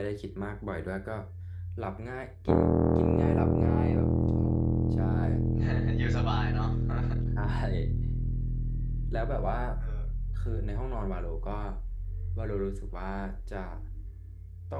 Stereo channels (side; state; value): both; identical; correlation 1.00